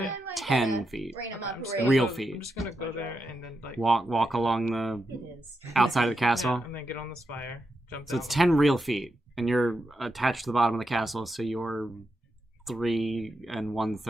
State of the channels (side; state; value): both; normal; correlation 0.86